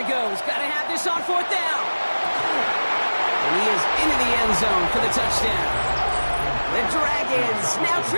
goes. Got to have this on 4th down. And he is into the end zone for the touchdown. The Dragons now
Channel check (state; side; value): inverted; both; correlation -1.00